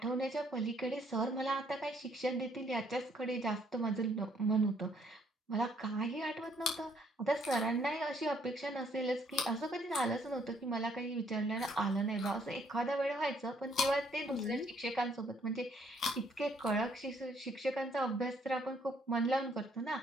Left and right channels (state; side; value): normal; both; correlation 0.67